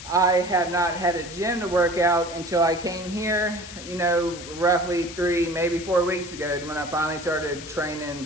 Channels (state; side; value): noise; left; hiss, 13 dB below the sound